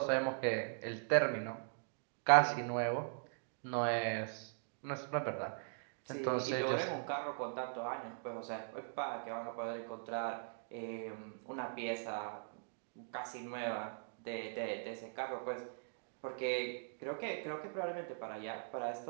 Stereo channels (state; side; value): silent; left; digital silence